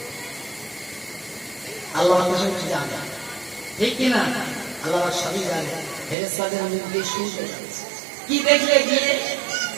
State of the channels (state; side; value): drops out; left; at 6.2 s